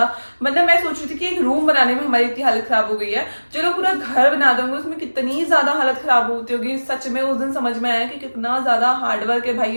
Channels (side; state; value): both; inverted; correlation -1.00